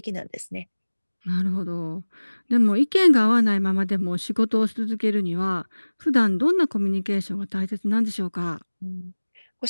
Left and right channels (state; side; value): inverted; both; correlation -1.00